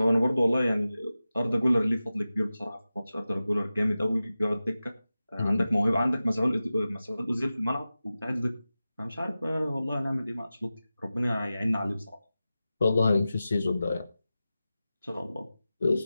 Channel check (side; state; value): both; inverted; correlation -0.95